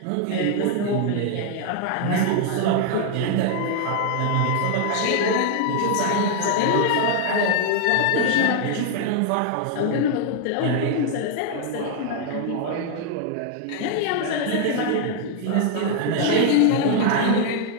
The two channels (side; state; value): both; different; correlation 0.00